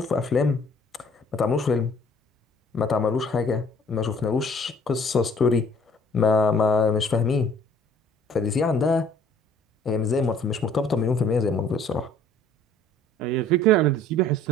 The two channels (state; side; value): normal; both; correlation 0.56